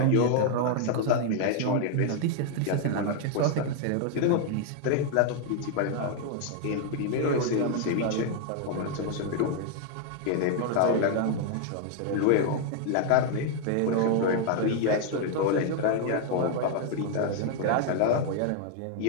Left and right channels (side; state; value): both; different; correlation 0.00